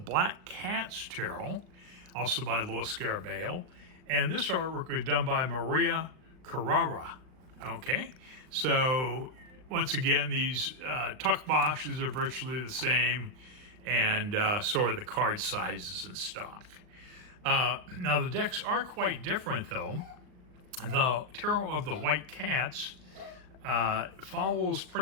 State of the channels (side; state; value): left; late; 38 ms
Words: Cats Tarot, also by Lo Scarabeo, and this artwork was done by Maria Kurara. Okay, so once again, these tuck boxes are virtually the same, and so are the card sizes and stock. Now, the decks are quite different, though. The Tarot of the White Cats follows